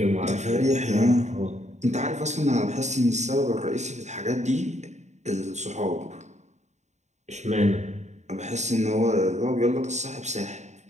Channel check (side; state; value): left; late; 0.33 ms